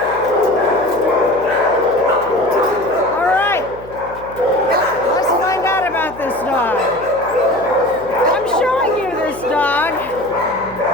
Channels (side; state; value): left; noise; hum, 19 dB below the sound